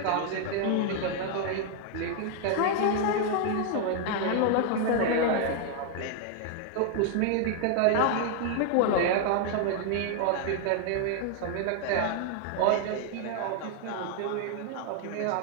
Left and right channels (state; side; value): different; both; correlation 0.00